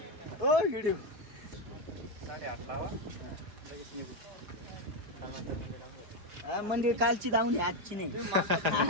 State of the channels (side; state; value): left; late; 4.9 ms